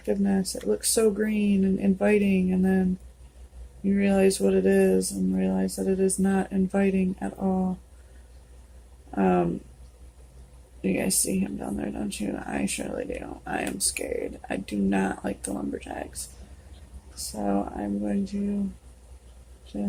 It looks so green and inviting, and then you realize what it is and realize that it is not inviting at all. You guys see him down there, don't you? I surely do. I am scared. I do not like the lumberjacks. So I'm going to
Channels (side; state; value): both; identical; correlation 1.00